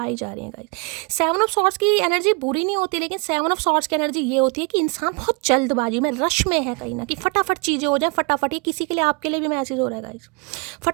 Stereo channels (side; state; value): left; quieter; 32.2 dB